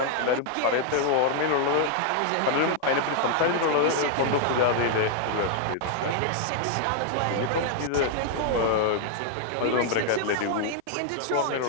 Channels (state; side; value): different; both; correlation 0.00